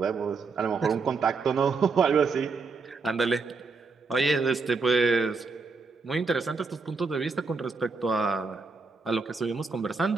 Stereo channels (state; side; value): quieter; left; 4.4 dB